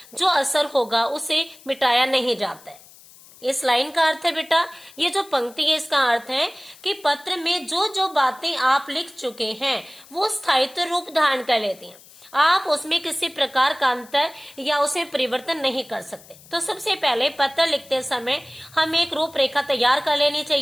जो असर होगा उसे मिटाया नहीं जाता है। इस लाइन का अर्थ है बेटा, ये जो पंक्ति है इसका अर्थ है कि पत्र में जो जो बातें आप लिख चुके हैं वो स्थायित्व रूप धारण कर लेती हैं। आप उसमें किसी प्रकार का अंतर या उसमें परिवर्तन नहीं कर सकते। तो सबसे पहले पत्र लिखते समय हमें एक रूपरेखा तैयार कर लेनी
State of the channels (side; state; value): left; noise; hiss, 23 dB below the sound